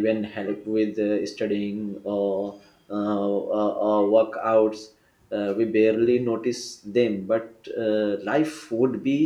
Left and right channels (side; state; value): both; identical; correlation 1.00